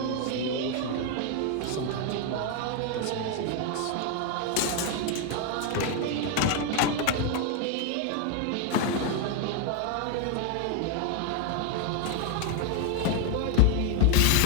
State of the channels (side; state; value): both; different; correlation 0.01